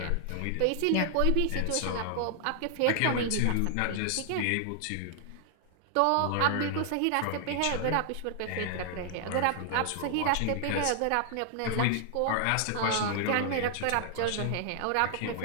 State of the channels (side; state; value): both; different; correlation 0.00